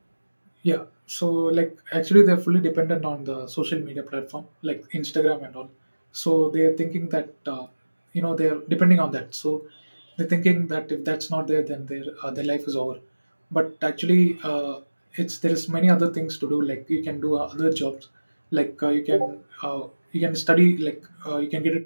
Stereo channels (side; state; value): both; inverted; correlation -1.00